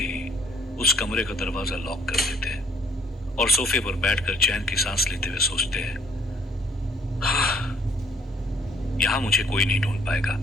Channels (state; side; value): normal; both; correlation 0.62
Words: उस कमरे का दरवाजा लॉक कर देते हैं और सोफे पर बैठकर चैन की सांस लेते हुए सोचते हैं, यहां मुझे कोई नहीं ढूंढ पाएगा।